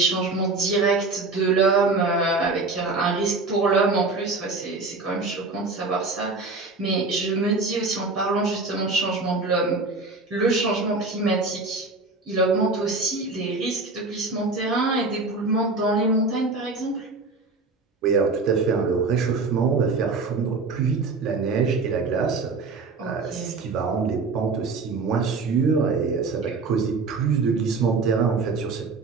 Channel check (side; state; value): left; quieter; 3.8 dB